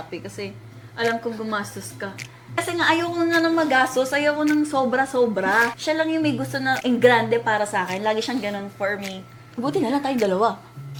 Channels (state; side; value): identical; both; correlation 1.00